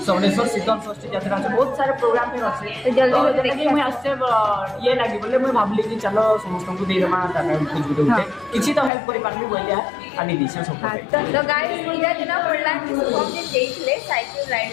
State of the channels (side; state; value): right; drops out; at 8.9 s